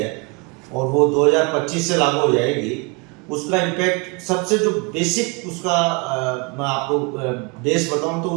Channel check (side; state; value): left; quieter; 29.9 dB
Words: और वो 2025 से लागू हो जाएगी। उसका इम्पैक्ट सबसे जो बेसिक उसका मैं आपको बेस बताऊं